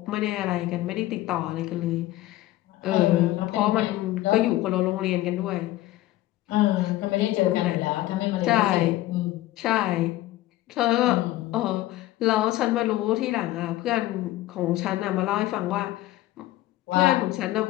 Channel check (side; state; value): right; quieter; 16.2 dB